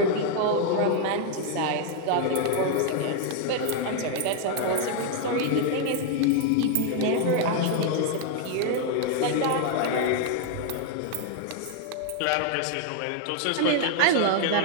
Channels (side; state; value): both; different; correlation 0.00